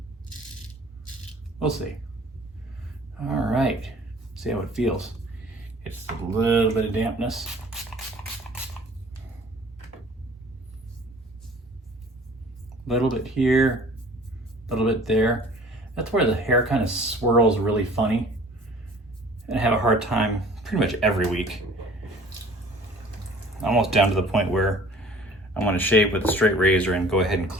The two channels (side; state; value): both; normal; correlation 0.49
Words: we'll see. All right, see how it feels. It's a little bit of dampness. A little bit here, a little bit there. That's where the hair kind of swirls really funny. And I have a hard time pretty much every week. Almost down to the point where I want to shave with a straight razor and go ahead and